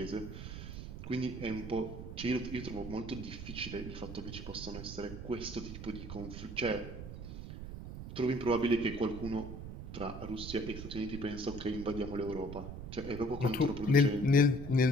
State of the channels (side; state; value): right; noise; rumble, 9 dB below the sound